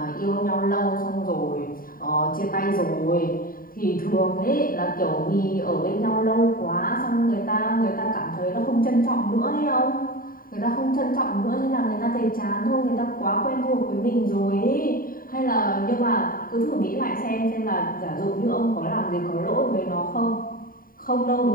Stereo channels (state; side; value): late; right; 0.41 ms